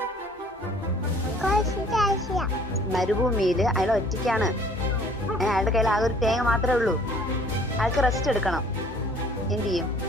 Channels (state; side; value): normal; both; correlation 0.55